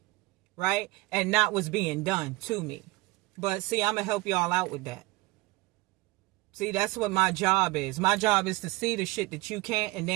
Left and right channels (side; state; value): left; quieter; 21.4 dB